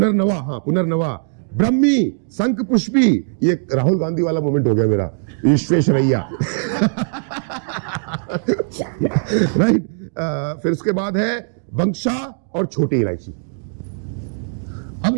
पुनर्नवा, ब्रह्मी, शंख पुष्पी। ये राहुल गांधी वाला मोमेंट हो गया मेरा, विश्वेश्वरैया। राइट। फिर उसके बाद है बंक्षा और छोटी इलायची। अब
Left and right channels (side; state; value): left; silent; digital silence